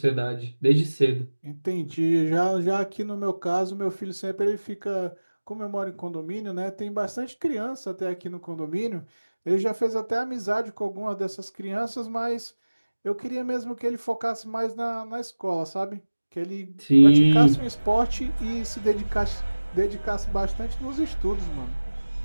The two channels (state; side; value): inverted; both; correlation -1.00